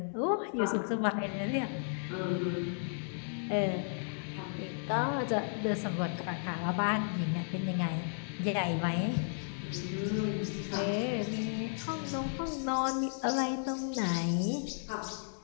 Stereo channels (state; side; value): silent; right; 55 dB below the other